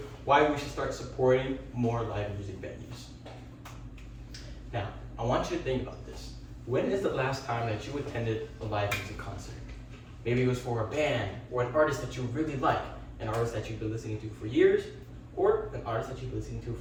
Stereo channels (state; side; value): identical; both; correlation 1.00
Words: why we should start supporting more live music venues. Now, I want you to think about this. When is the last time that you attended a live music concert? Maybe it was for a band, or an artist that you really like, an artist that you've been listening to for years, or an artist that you've been listening to